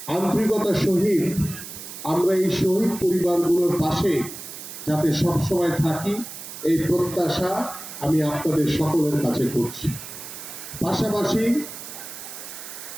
আন্তরিকতা সহিত আমরা এই শহীদ পরিবারগুলোর পাশে যাতে সবসময় থাকি এই প্রত্যাশা আমি আপনাদের সকলের কাছে করছি। পাশাপাশি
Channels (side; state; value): right; noise; hiss, 11 dB below the sound